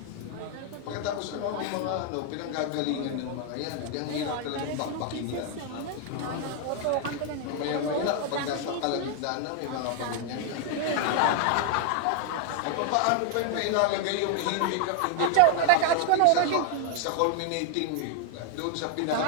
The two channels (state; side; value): different; both; correlation 0.00